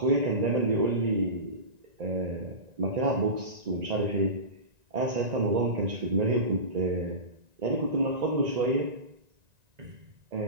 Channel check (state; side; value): late; left; 1.9 ms